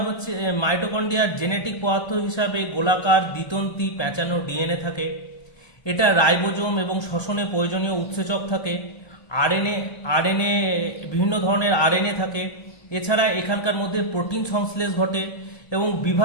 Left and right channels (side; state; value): right; late; 1.2 ms